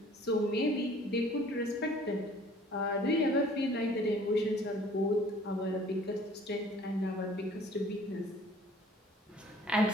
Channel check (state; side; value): normal; both; correlation 0.53